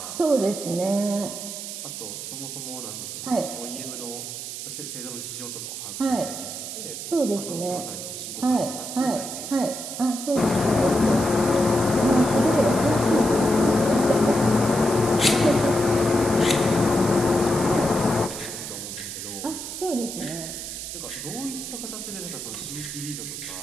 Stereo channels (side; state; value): right; noise; hiss, 8 dB below the sound